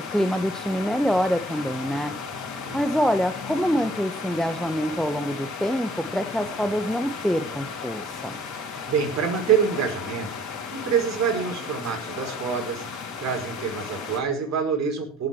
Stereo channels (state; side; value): normal; both; correlation 0.58